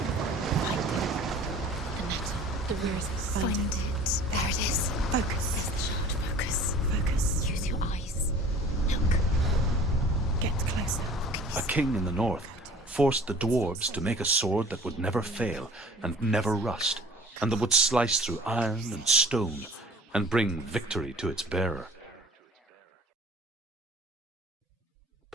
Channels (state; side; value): normal; both; correlation 0.47